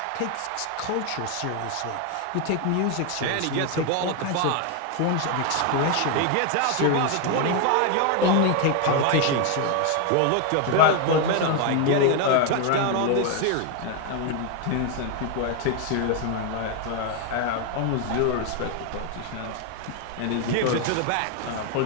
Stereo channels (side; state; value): both; different; correlation 0.01